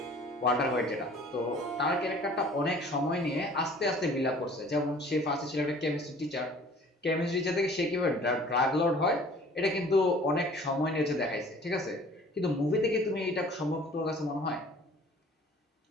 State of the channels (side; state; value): both; normal; correlation 0.50